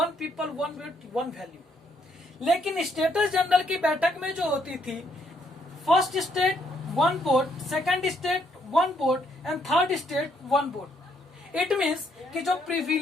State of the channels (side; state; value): both; normal; correlation 0.71